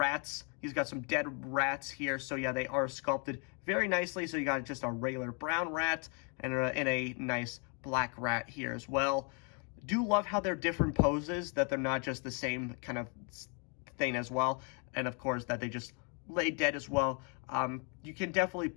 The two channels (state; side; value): quieter; right; 37.0 dB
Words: He's got some dead rats here. So yeah, they are sculpted very nicely. So you got just a regular brown rat and a nice black rat here as well. Do love how they're different poses, that they're not just the same kind of thing as well. And of course, that they just lay dead as well. You can definitely